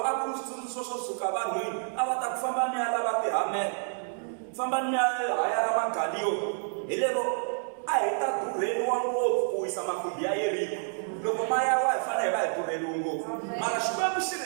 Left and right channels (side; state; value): left; silent; digital silence